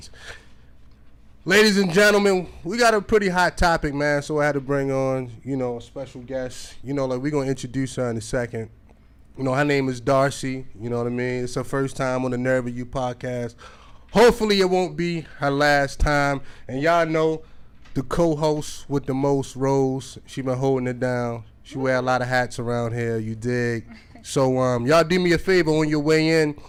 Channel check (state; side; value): identical; both; correlation 1.00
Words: Ladies and gentlemen, we got a pretty hot topic, man, so I had to bring on, a special guest. We're going to introduce her in a second. Her name is Darcy, you know what I mean? It's her first time on the Nerve of You podcast. Hopefully it won't be her last time. And y'all know the co-host with the most roles. She been holding it down. She wear a lot of hats around here, you dig? So y'all do me a favor on your way in.